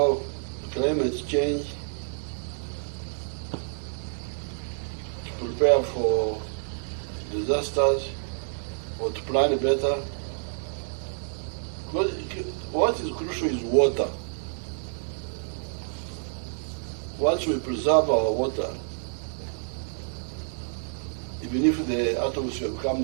climate change, to prepare for disasters or to plan better. What is crucial is water. Once we preserve our water, even if the atmosphere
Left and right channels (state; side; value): silent; left; digital silence